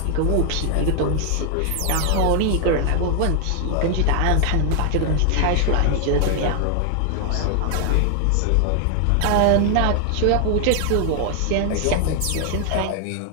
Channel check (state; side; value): different; both; correlation 0.00